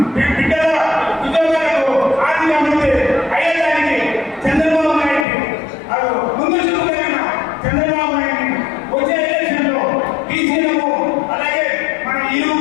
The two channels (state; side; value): drops out; right; at 5.2 s